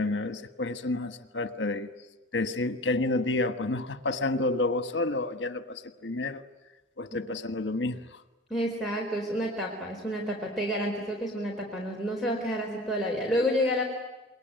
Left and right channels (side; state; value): both; normal; correlation 0.36